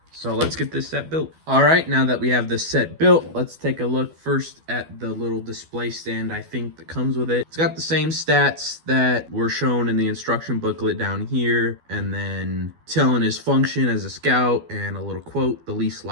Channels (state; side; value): late; left; 12 ms